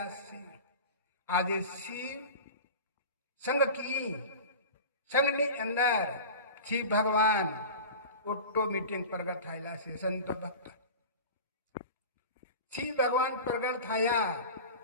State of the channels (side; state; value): both; inverted; correlation -0.33